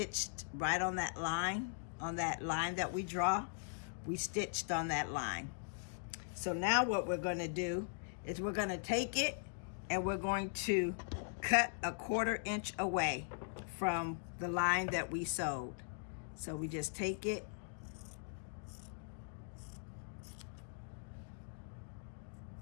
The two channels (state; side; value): silent; right; digital silence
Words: right on that line that we draw? We stitched on that line. So now what we're going to do is we're going to take it and we're going to cut a 1/4 inch away from the line that we sewed. So we just take it